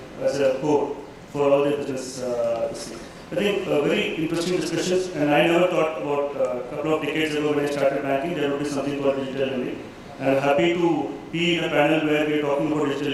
as a core for all their business. I think very interesting discussions, and I never thought about a couple of decades ago when I started banking, there would be something called digital lending. I'm happy to be in a panel where we're talking about digital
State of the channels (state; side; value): identical; both; correlation 1.00